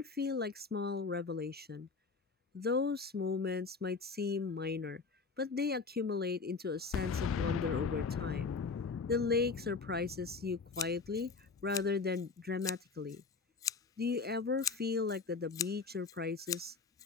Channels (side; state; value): right; quieter; 4.6 dB